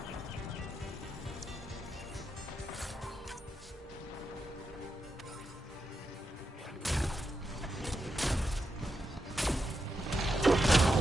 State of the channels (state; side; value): normal; both; correlation 0.85